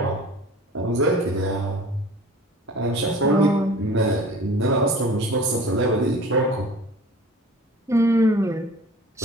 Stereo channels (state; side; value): normal; both; correlation 0.43